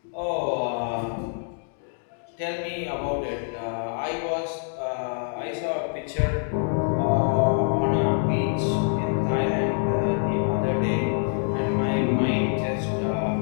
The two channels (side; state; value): right; silent; 61 dB below the other